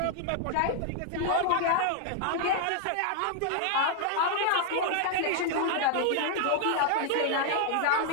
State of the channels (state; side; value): different; both; correlation 0.00